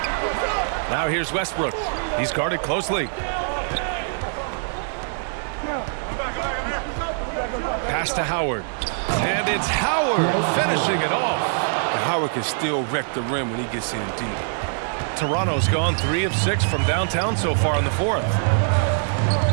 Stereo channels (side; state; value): left; silent; digital silence